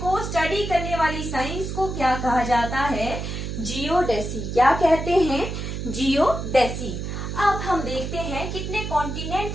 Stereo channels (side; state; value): right; noise; hum, 5 dB below the sound